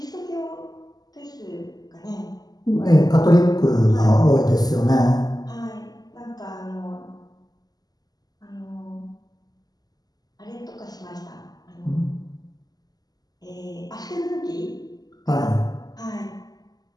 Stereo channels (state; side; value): late; right; 0.19 ms